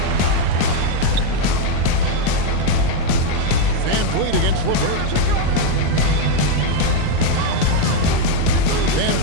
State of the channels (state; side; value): different; both; correlation 0.02